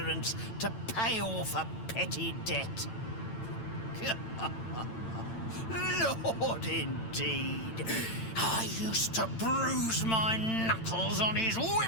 to pay off a petty debt. Lord, indeed. I used to bruise my knuckles on his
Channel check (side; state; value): right; late; 8.9 ms